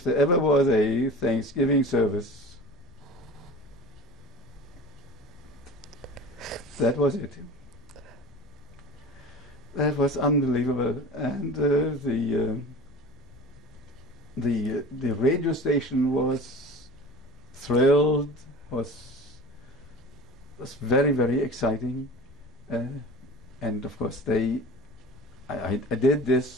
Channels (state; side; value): noise; left; rumble, 23 dB below the sound